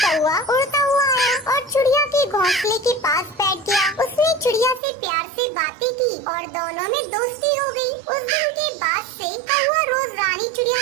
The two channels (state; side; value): drops out; left; at 4.8 s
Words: कौवा उड़ता हुआ आया और चिड़िया के घोंसले के पास बैठ गया। उसने चिड़िया से प्यार से बातें की और दोनों में दोस्ती हो गई। उस दिन के बाद से कौवा रोज रानी चिड़िया